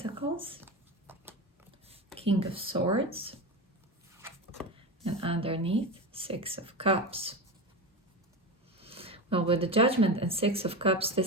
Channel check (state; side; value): normal; both; correlation 0.22